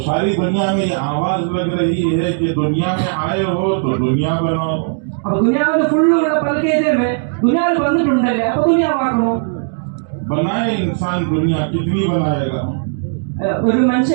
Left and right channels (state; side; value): silent; left; digital silence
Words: सारी दुनिया में ये आवाज लग रही है कि दुनिया में आए हो तो दुनिया बनाओ। അപ്പൊ ദുനിയാവിൽ ഫുള്ളുള്ള പൽക്കേതേ ദുനിയാവിൽ വന്നിട്ടുണ്ടല്ലേ അപ്പൊ ദുനിയാവാക്കണോ? बनाए इंसान दुनिया कितनी बनाएगा? ഒരു